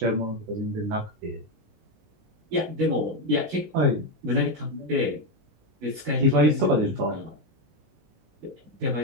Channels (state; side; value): late; left; 19 ms